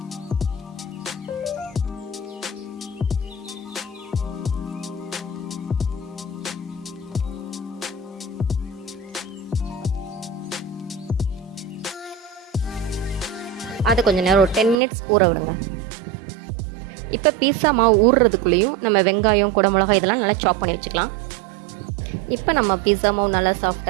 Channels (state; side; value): drops out; left; at 14.8 s